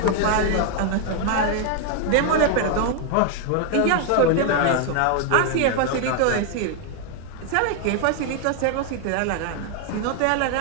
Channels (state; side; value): different; both; correlation 0.00